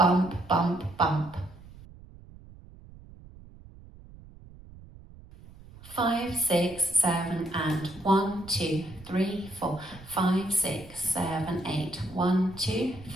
bump, bump. 5, 6, 7, and 1, 2, 3, 4, 5, 6, 7, 8, 1, 2,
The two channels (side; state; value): right; noise; rumble, 20 dB below the sound